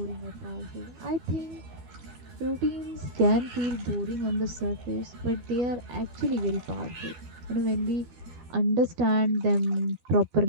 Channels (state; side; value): late; left; 13 ms